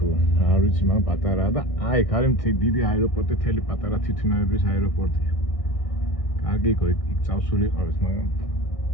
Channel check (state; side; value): late; right; 1.6 ms